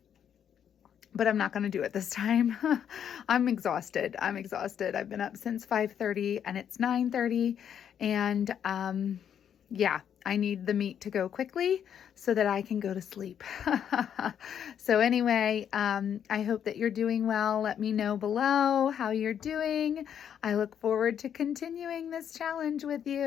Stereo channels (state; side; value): quieter; right; 8.8 dB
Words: but I'm not going to do it this time. I'm exhausted. I've been up since 5:30 and it's 9:30. And yeah, I need the meat to go quickly so that I can go to sleep. So anyway, I hope that you're doing well. Let me know below how you're doing. I look forward to continuing this challenge with